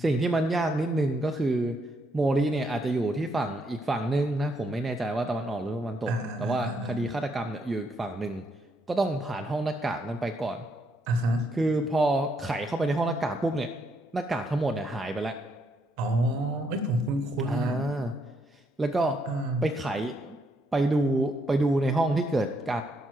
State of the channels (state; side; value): normal; both; correlation 0.75